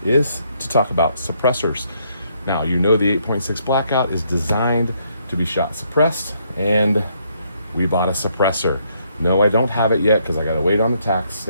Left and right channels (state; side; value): inverted; both; correlation -0.72